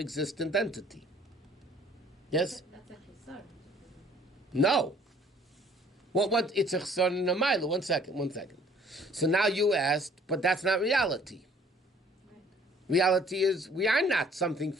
entity. Yes? That's a chesar. No. What? It's a chesar and a mila. One second. So now you asked, but that's not reality. Right. Reality is we are not something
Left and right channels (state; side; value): normal; both; correlation 0.57